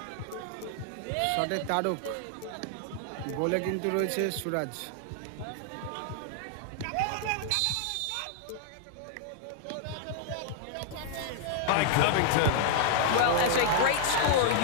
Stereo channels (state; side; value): different; both; correlation -0.01